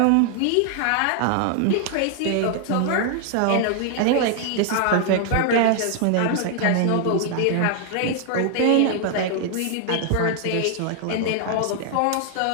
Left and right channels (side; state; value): both; different; correlation 0.00